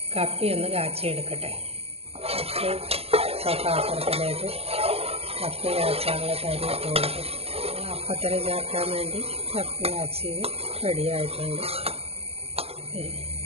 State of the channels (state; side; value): late; left; 0.29 ms